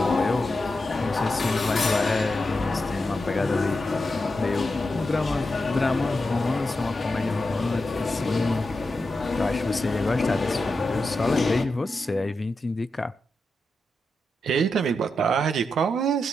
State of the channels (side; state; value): both; normal; correlation 0.88